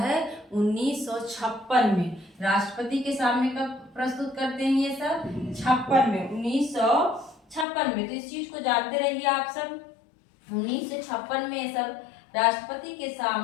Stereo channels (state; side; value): drops out; right; at 7.7 s